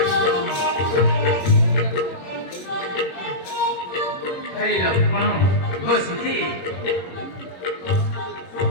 ହେ ଲକ୍ଷ୍ମଣ, ତୋ ସ୍ଥିତି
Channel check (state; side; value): late; right; 22 ms